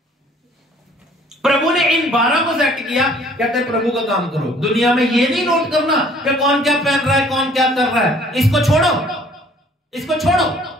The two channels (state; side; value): normal; both; correlation 0.57